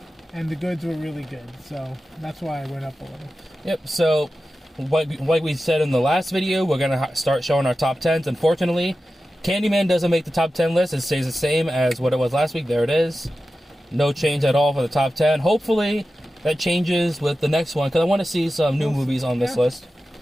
the goods were really good, so that's why I went up a little. Yep. So, like we said in the last video, we're gonna start showing our top 10s. Unfortunately, Candyman doesn't make the top 10 list. It stays the same as what it was last week. There it is. No change at all for the top 10. Hopefully that changes with the next one, because I want to see some new movies on this list.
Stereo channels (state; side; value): normal; both; correlation 0.93